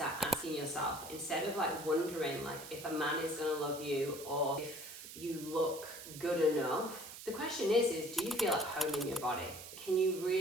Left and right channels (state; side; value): noise; right; hiss, 13 dB below the sound